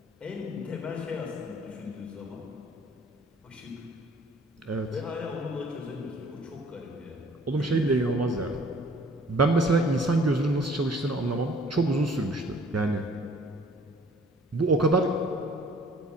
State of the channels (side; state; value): both; normal; correlation 0.54